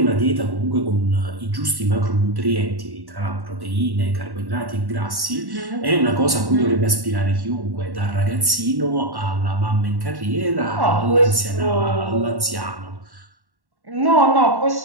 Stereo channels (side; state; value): left; late; 1.1 ms